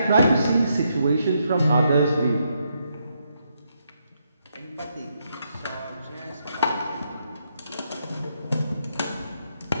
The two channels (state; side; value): inverted; both; correlation -0.78